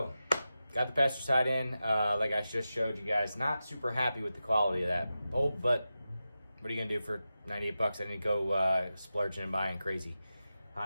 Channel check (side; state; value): both; inverted; correlation -0.92